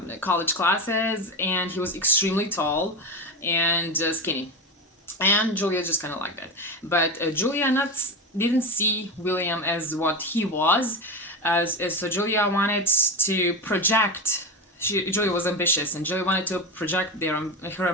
college classes, and he was extremely tall and skinny, and Julia just kind of liked that. But Julia didn't see William as what he was, so Julia wanted to project. Julia was ambitious, and Julia wanted to project her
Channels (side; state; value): both; normal; correlation 0.19